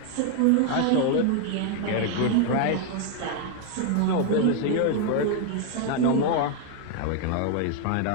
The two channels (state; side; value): different; both; correlation 0.01